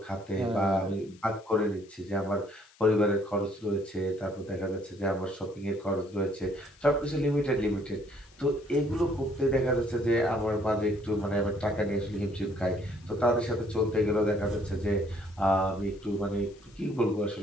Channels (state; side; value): noise; left; hiss, 28 dB below the sound